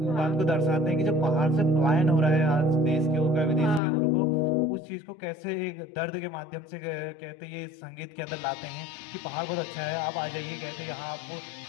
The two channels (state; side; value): drops out; right; at 3.8 s